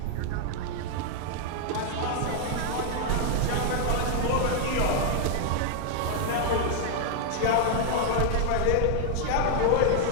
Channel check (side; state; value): both; different; correlation 0.00